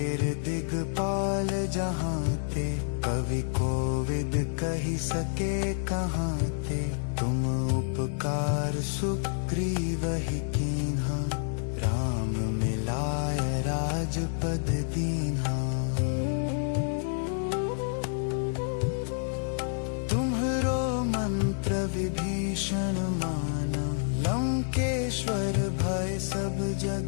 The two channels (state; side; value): silent; right; 59 dB below the other